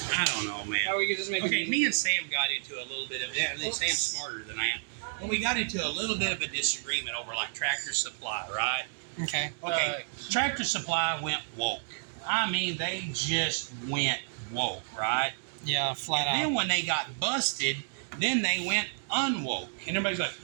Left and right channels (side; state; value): left; silent; digital silence